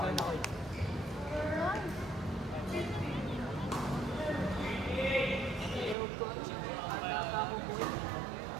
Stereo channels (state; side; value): drops out; left; at 6.0 s